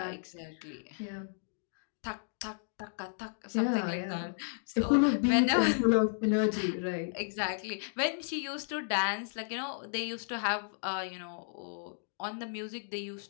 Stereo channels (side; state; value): right; silent; digital silence